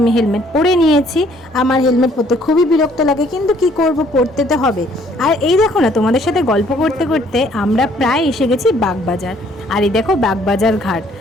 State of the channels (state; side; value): normal; both; correlation 0.62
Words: আমি হেলমেট পরে নিয়েছি। আমার হেলমেট পরতে খুবই বিরক্ত লাগে, কিন্তু কি করব, পরতে তো হবে। আর এই দেখো না, তোমাদের সাথে গল্প করতে করতে আমরা প্রায় এসে গেছি বাগবাজার। আর এই দেখো বাগবাজার ঘাট।